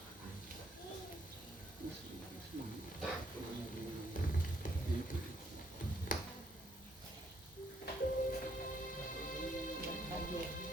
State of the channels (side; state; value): both; normal; correlation 0.70